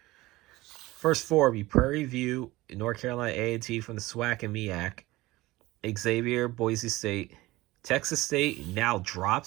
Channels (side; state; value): left; quieter; 19.3 dB